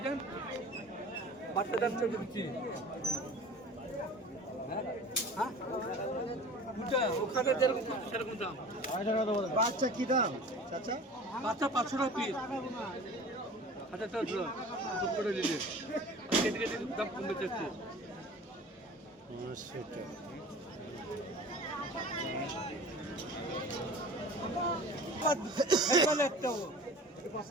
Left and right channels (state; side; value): normal; both; correlation 0.41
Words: বাচ্চা যাচ্ছে দিচ্ছি ওখানে সেরকম দাম বাচ্চা কি দাম আচ্ছা বাচ্চা 500 টাকা পিস আচ্ছা চল করে দিলে কেটে দাম কমে যাচ্ছে